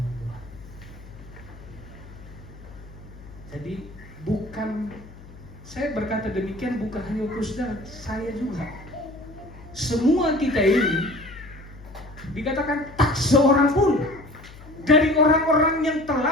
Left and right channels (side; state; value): left; noise; hum, 18 dB below the sound